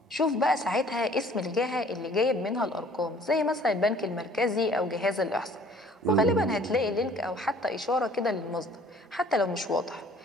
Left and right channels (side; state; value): both; normal; correlation 0.54